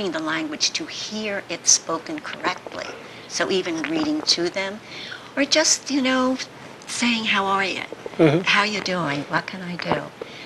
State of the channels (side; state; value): both; identical; correlation 1.00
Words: the language to hear it spoken correctly. So even reading to them, or just, you know, saying, how are you? Mm-hmm. How you doing? What can I do?